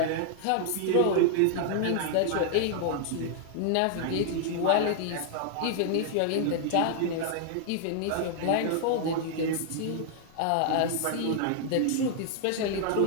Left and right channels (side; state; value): both; different; correlation -0.01